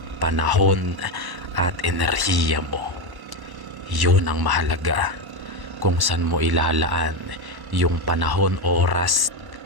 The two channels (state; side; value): late; left; 1.1 ms